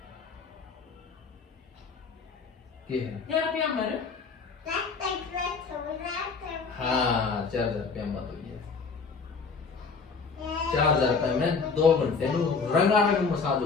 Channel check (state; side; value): quieter; right; 4.9 dB